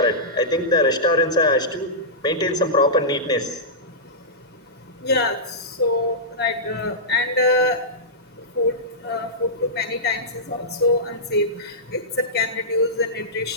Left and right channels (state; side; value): normal; both; correlation -0.14